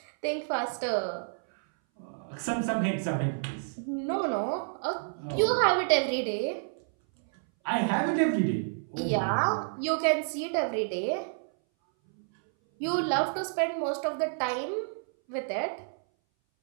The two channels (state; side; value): silent; left; 58 dB below the other